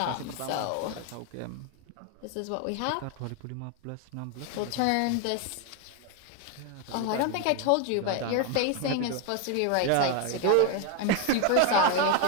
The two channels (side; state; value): both; different; correlation 0.01